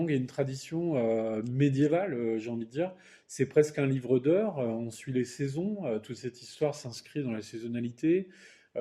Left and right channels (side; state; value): both; identical; correlation 1.00